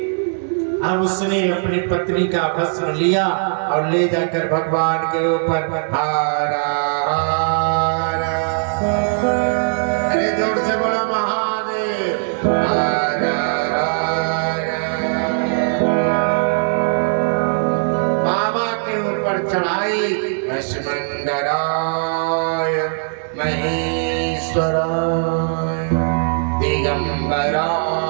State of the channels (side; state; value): left; silent; 66 dB below the other